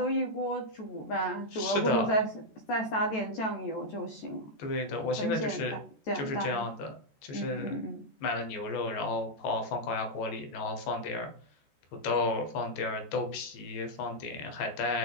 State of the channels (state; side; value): late; right; 14 ms